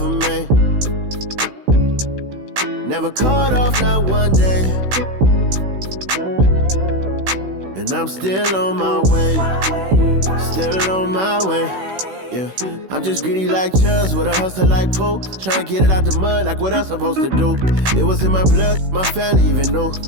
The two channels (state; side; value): late; left; 16 ms